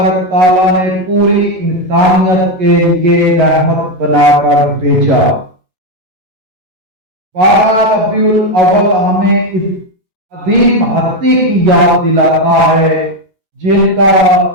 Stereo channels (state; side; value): late; left; 11 ms